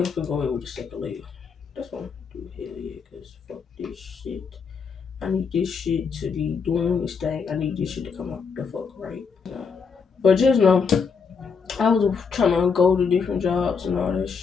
I'm gonna go in with the second layer. That's what I'm gonna do. Hell yeah, because fuck this shit. I need this shit to be doing this thing. I need this shit to come out the fuck right. But just know, I was trying to go to different jobs and all that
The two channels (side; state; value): right; quieter; 5.7 dB